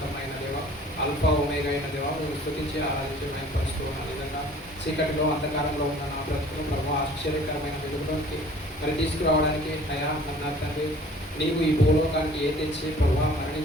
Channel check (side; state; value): both; normal; correlation 0.50